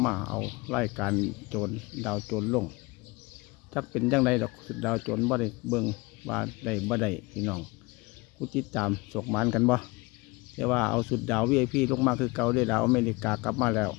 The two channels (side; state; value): right; quieter; 24.3 dB